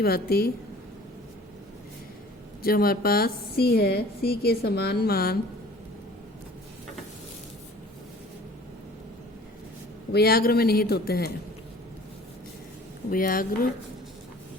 भांति जो हमारे पास C है, C के समान मान उभयग्र में निहित होते हैं। उभयग्र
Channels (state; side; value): normal; both; correlation 0.48